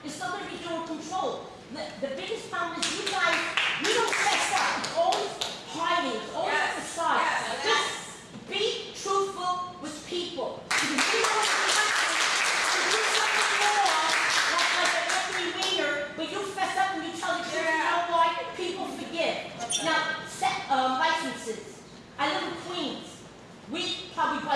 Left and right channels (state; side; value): identical; both; correlation 1.00